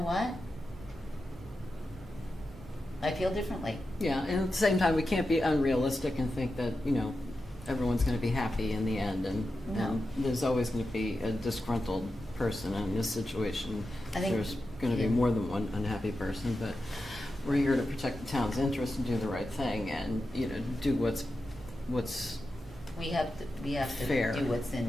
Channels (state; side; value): normal; both; correlation 0.90